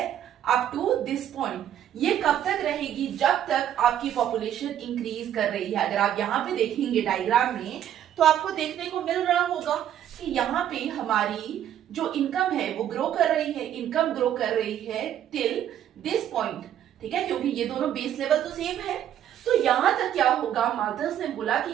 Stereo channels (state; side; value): quieter; left; 10.7 dB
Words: अप टू दिस पॉइंट। ये कब तक रहेगी, जब तक आपकी पॉपुलेशन इंक्रीज कर रही है। अगर आप यहाँ पे देखेंगे डायग्राम में तो आपको देखने को मिल रहा होगा कि यहाँ पे हमारी जो इनकम है वो ग्रो कर रही है, इनकम ग्रो कर रही है टिल दिस पॉइंट, ठीक है, क्योंकि ये दोनों बेस लेवल तो सेम है। तो यहां तक क्या होगा, माल्थस ने बोला कि